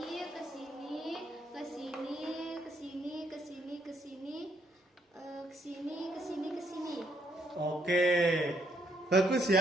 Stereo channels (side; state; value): both; normal; correlation 0.73